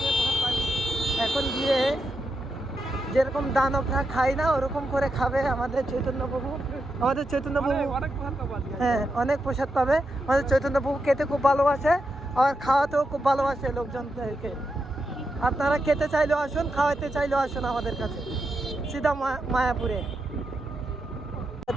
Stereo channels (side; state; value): both; normal; correlation 0.85